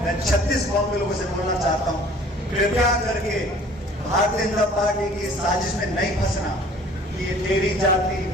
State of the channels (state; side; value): normal; both; correlation 0.52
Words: मैं 36 कौम के लोगों से बोलना चाहता हूँ, कृपया करके भारतीय जनता पार्टी की साजिश में नहीं फंसना। ये तेरी जाति